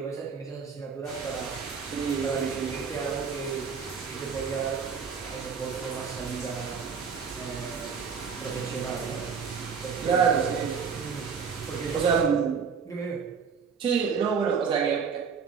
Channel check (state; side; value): quieter; left; 6.0 dB